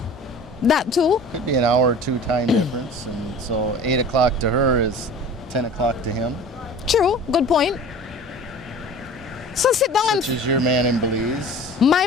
That too? Could be an hour or two time difference. And so 8 o'clock to her is 10 o'clock to him. True. Good point. So sit down and... Which is your man in Belize. My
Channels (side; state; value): both; normal; correlation 0.42